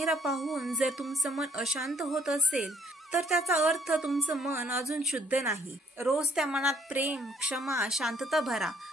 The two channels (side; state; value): both; normal; correlation 0.64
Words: पाहून जर तुमचं मन अशांत होत असेल तर त्याचा अर्थ तुमचं मन अजून शुद्ध नाही. रोज त्या मनात प्रेम, क्षमा, शांतता भरा.